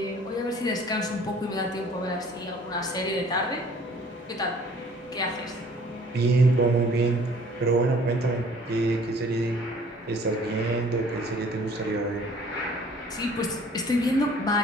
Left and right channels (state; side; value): normal; both; correlation 0.54